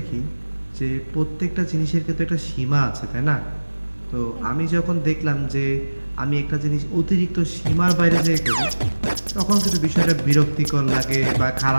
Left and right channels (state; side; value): inverted; both; correlation -1.00